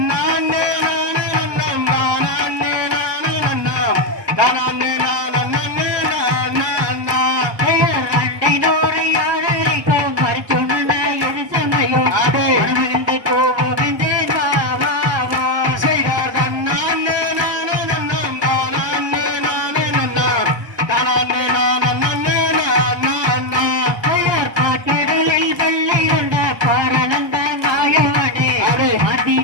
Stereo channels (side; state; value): left; late; 1.2 ms